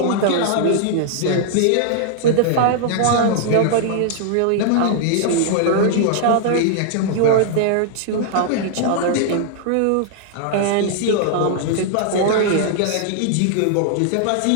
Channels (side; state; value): both; different; correlation -0.01